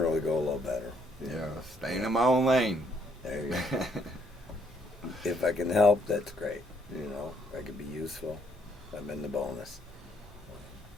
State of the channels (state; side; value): normal; both; correlation 0.70